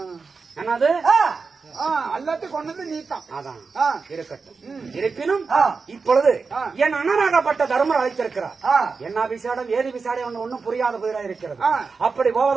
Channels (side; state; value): left; quieter; 4.7 dB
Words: என்னது? எல்லாத்தையும் கொண்டது நீத்தான். அதான் இருக்கட்டும். இருப்பினும் இப்பொழுது என் அண்ணனாகப்பட்ட தர்மர் அழைத்திருக்கிறார். என்ன விசாடம் ஏது விசாடம் ஒன்னும் புரியாத புதிரா இருக்கிறது. அப்படி